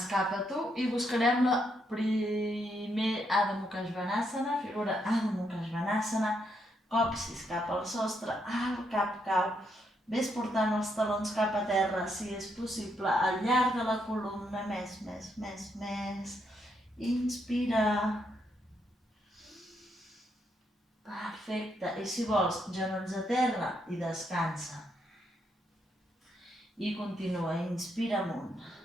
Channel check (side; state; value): both; normal; correlation 0.77